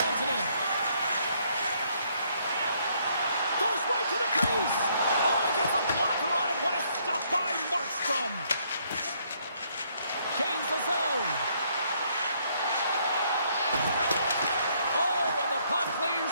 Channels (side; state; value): both; inverted; correlation -0.69